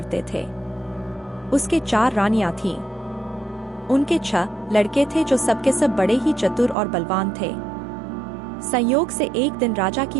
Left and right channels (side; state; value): left; drops out; at 6.8 s